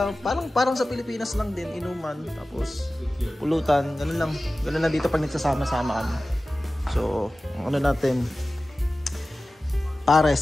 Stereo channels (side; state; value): both; normal; correlation 0.96